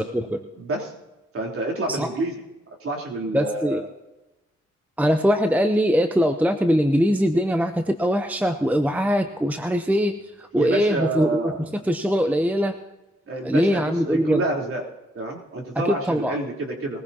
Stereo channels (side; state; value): both; normal; correlation 0.79